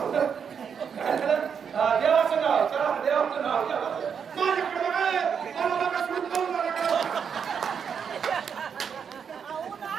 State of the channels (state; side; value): quieter; left; 7.0 dB